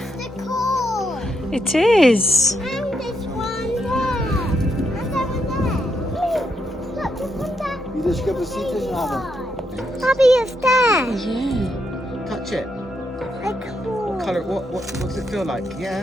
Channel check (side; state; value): both; normal; correlation 0.79